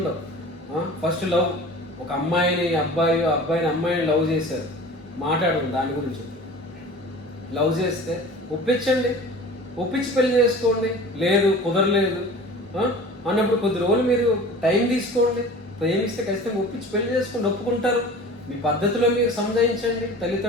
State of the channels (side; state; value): both; normal; correlation 0.40